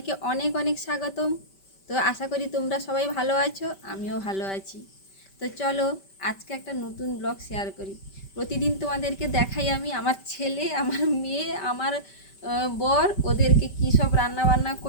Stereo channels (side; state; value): right; late; 5.2 ms